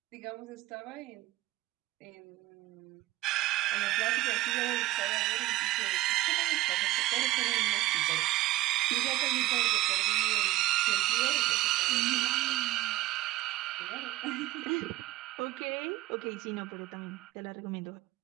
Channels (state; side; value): quieter; left; 17.2 dB